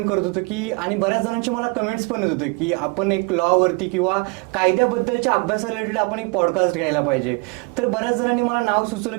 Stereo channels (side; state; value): left; quieter; 31.1 dB